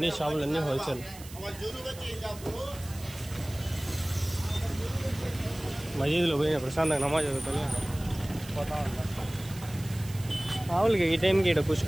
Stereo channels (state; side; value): noise; right; hiss, 17 dB below the sound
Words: షాపులు అన్నీ హోల్సేల్. మసీదులో పోయిన ప్రశాంతంగా నమాజ్ చదువుకొని పోతా ఉంటాం. మామూలుగా ఈ టైంకి ఇక్కడ